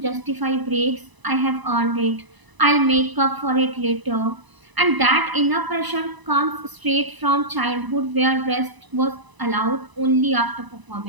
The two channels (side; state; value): left; late; 1.0 ms